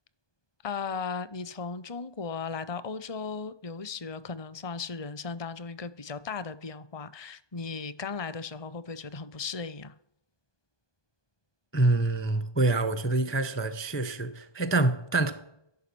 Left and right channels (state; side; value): late; right; 1.2 ms